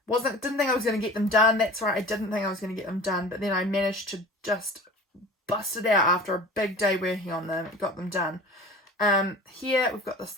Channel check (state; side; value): normal; both; correlation 0.39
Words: think I was going to get them done. That's right, I didn't think I was going to get them done, but then I managed to just bust it out after a big day working on them. Got them done. Here we've got this